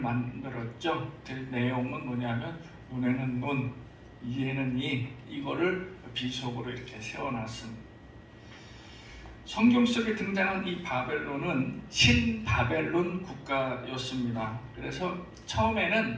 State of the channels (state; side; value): identical; both; correlation 1.00